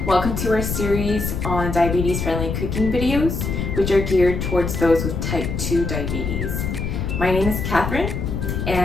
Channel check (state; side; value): noise; left; rumble, 3 dB below the sound